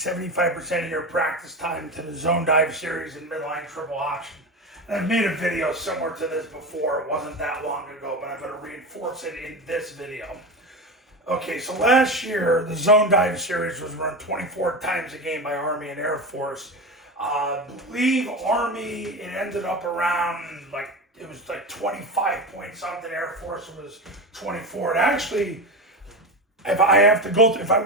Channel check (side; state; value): both; normal; correlation 0.22